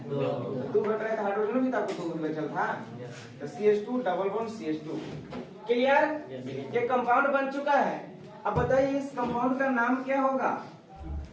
2 घट रहा है, तो हाइड्रोजन भी तो आपको 2 बचल था, तो CH2 double bond CH2। Clear? ये कंपाउंड बन चुका है। अब बताइए इस कंपाउंड का नाम क्या होगा?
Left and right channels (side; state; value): both; identical; correlation 1.00